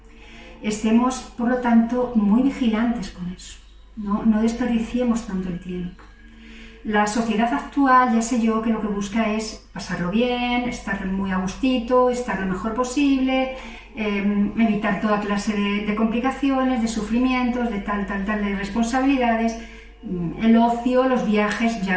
Estemos, por lo tanto, muy vigilantes con eso, no desperdiciemos tanto el tiempo. La sociedad actual, ya sé yo, que lo que busca es pasarlo bien, estar muy a gustito, estar lo mejor posible, evitar toda clase de complicaciones, de sufrimientos, de tal, de responsabilidades, el ocio, los viajes,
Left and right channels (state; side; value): identical; both; correlation 1.00